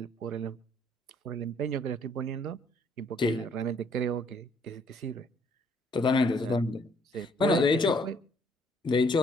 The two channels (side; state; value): both; normal; correlation 0.65